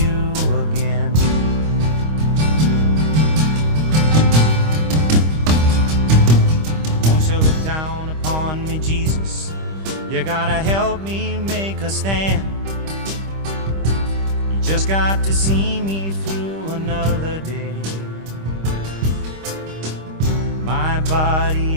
again. Won't you look down upon me, Jesus? You gotta help me make a stand. You just got to see me through another day. My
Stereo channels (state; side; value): late; left; 25 ms